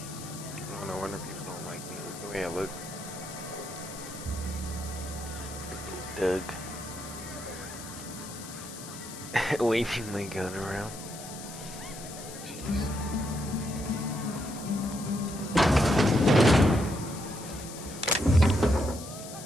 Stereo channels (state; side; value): noise; left; hiss, 13 dB below the sound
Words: No wonder people don't like me. Look the way I look. Freaking Doug. Waving my gun around. Jeez.